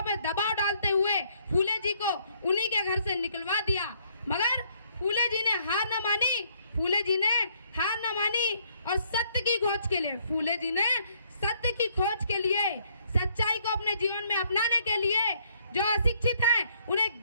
पे दबाव डालते हुए फूले जी को उन्हीं के घर से निकलवा दिया। मगर फूले जी ने हार न मानी, फूले जी ने हार न मानी और सत्य की खोज के लिए, फूले जी ने सत्य की खोज के लिए, सच्चाई को अपने जीवन में अपनाने के लिए, जो अशिक्षित हैं उन्हें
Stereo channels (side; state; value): both; inverted; correlation -0.67